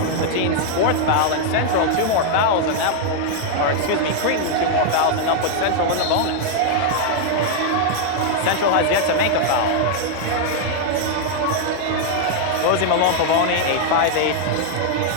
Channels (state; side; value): different; both; correlation 0.00